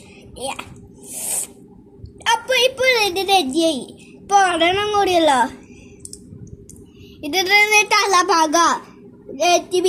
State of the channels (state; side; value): identical; both; correlation 1.00